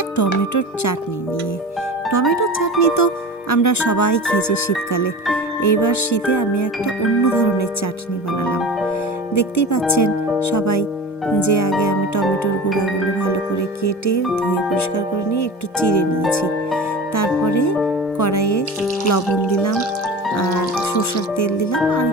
টমেটোর চাটনি নিয়ে। টমেটোর চাটনি তো আমরা সবাই খেয়েছি শীতকালে। এইবার শীতে আমি একটা অন্য ধরনের চাটনি বানালাম। দেখতেই পাচ্ছেন সবাই যে আগে আমি টমেটোর গুঁড়াগুলো ভালো করে কেটে ধুয়ে পরিষ্কার করে নিয়ে একটু চিড়ে নিয়েছি। তারপরে কড়াইয়ে লবণ দিলাম আর সরষের তেল দিলাম আর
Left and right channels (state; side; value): normal; both; correlation 0.33